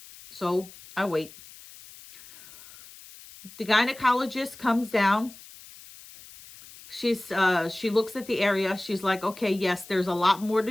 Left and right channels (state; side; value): noise; left; hiss, 19 dB below the sound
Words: So I wait. The gynecologist comes down. She looks at the area. She's like, okay, yes, there's a lot more